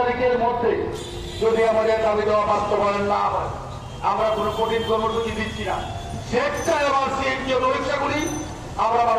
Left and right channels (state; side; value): identical; both; correlation 1.00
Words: মধ্যে যদি আমাদের দাবি দেওয়া বাস্তবায়ন না হয়, আমরা কোনো কঠিন কর্মসূচি দিচ্ছি না, স্বেচ্ছায় আমার সিএনজি পরীক্ষাগুলি আমরা